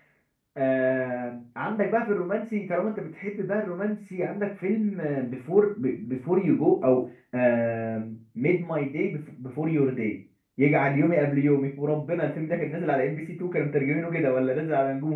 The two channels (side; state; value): both; identical; correlation 1.00